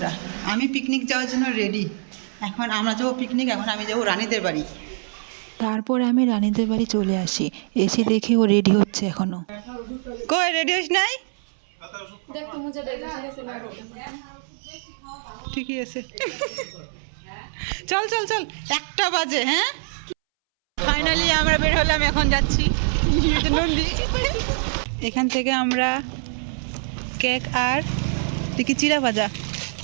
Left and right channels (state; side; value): silent; left; 63 dB below the other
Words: আমি পিকনিক যাওয়ার জন্য রেডি। এখন আমরা যাবো পিকনিক। এখন আমি যাবো রানীদের বাড়ি। তারপর আমি রানীদের বাড়ি চলে আসি। এসে দেখি ও রেডি হচ্ছে এখনো। কই রেডি হইস নাই? ঠিকই আছে। চল চল চল, 1টা বাজে। হ্যাঁ, ফাইনালি আমরা বের হলাম, এখন যাচ্ছি নন্দী। এখান থেকে আমরা কেক আর দেখি চিড়া ভাজা